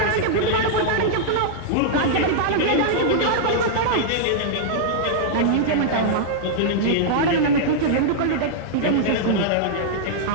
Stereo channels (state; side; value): different; both; correlation -0.02